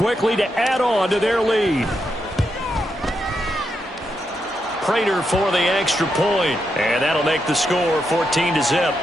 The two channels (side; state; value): both; normal; correlation 0.83